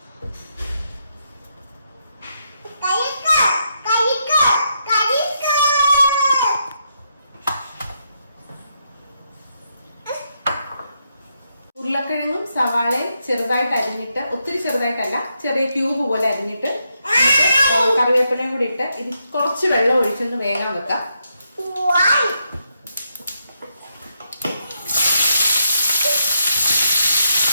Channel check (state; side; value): inverted; both; correlation -0.80